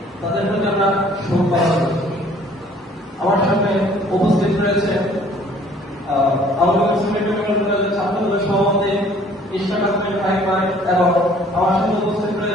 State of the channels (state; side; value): normal; both; correlation 0.56